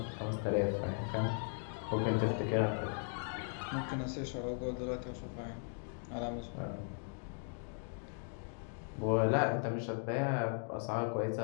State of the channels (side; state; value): right; silent; 53 dB below the other